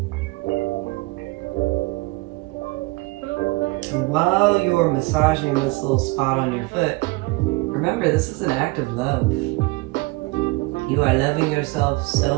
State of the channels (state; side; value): quieter; left; 23.8 dB